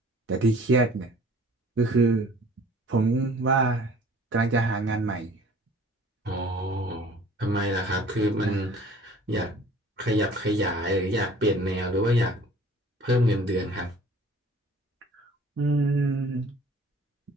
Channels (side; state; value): both; normal; correlation 0.50